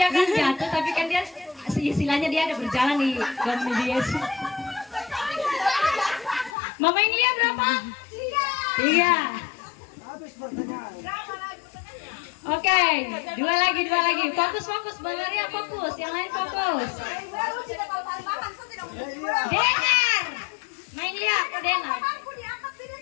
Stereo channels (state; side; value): drops out; right; at 6.6 s